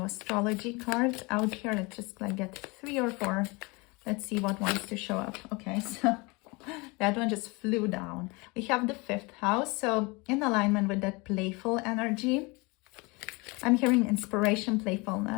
astrology cards out here. Let's just like get 3 or 4. Let's see what wants to show up. Okay, so that one just flew down. We have the 5th house, so in alignment with that playful energy. I'm hearing inspiration,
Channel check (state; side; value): quieter; right; 26.6 dB